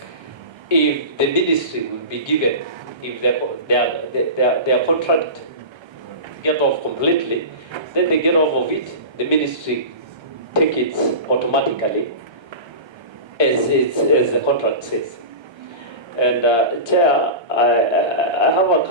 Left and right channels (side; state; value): left; late; 1.3 ms